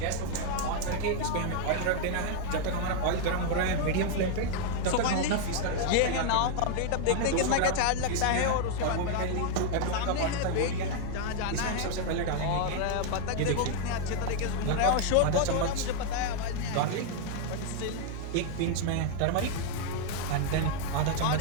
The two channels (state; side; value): different; both; correlation 0.00